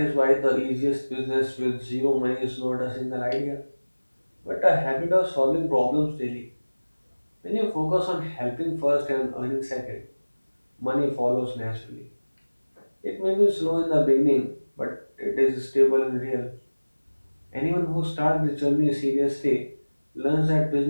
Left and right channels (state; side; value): inverted; both; correlation -1.00